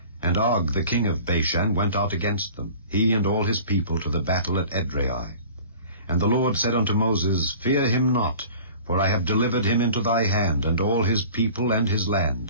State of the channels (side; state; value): both; inverted; correlation -0.44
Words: and Og the king of Bashan went out against them, he and all his people, to the battle at Edrei. And the Lord said unto Moses, Fear him not, for I have delivered him into thy hand, and all his people and his